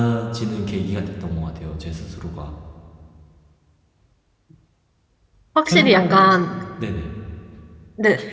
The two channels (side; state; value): both; identical; correlation 1.00